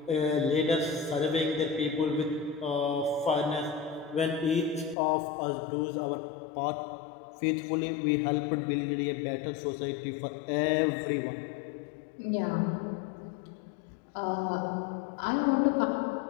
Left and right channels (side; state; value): right; drops out; at 5.0 s